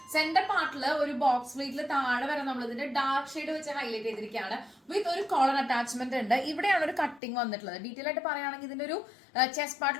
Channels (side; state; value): right; drops out; at 7.2 s